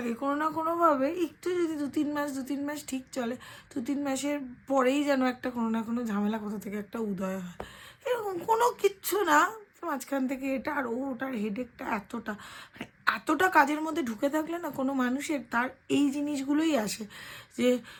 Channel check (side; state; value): both; identical; correlation 1.00